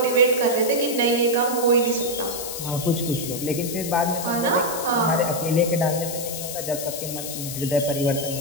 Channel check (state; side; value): noise; left; hiss, 7 dB below the sound